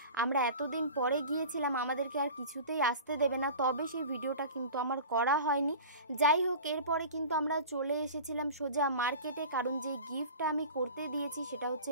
আমরা এতদিন পরে গিয়েছিলাম, আমাদেরকে আর কিছুতেই আসতে দেবে না। তবে সেই ভিডিওটা কিন্তু আমার করা হয়নি। যাই হোক, এরপরে কিন্তু আমরা চলে এসেছিলাম সোজা মার্কেটে, কারণ যে গিফটটা আমি করতে দিয়েছি সেটা হচ্ছে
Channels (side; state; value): both; inverted; correlation -0.37